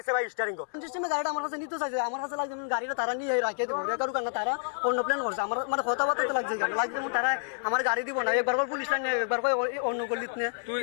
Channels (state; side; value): silent; right; digital silence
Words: ভাই স্টিয়ারিং কো সিস্টেমে গাড়িটা আমার কাছে নিতে চাইছে। আমার কাছে লাগছে গাড়িটা তারা নিয়ে রাখিয়ে দেবো, রেকারু কারণ তারা অন্য প্ল্যান করছে। আমার মানে কথাবার্তা লাগছে লাগছে তারা আমার গাড়ি দিব না, একবার করে পুলিশ লাইন একবার করে অন্য গলিত নিয়ে